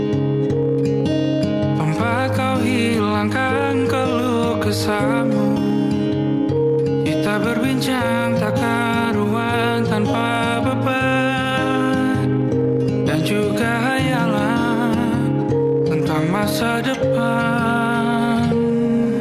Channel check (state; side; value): identical; both; correlation 1.00